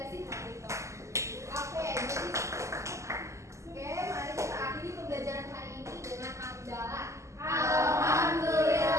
hal itu. Oke, jadi mari kita akhiri pembelajaran hari ini dengan hamdalah.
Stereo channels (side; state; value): left; late; 0.14 ms